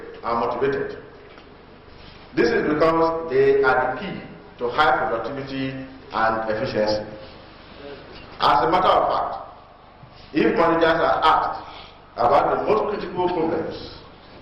and motivated. This is because they are the key to high productivity and efficiency. As a matter of fact, if managers are asked about the most critical problems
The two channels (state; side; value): identical; both; correlation 1.00